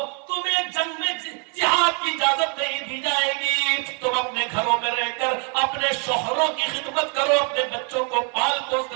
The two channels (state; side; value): quieter; left; 38.0 dB